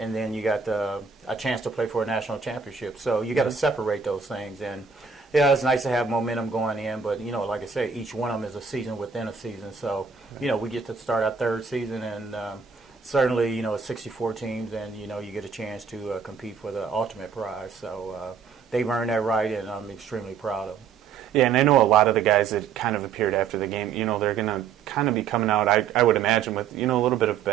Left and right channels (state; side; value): quieter; left; 6.2 dB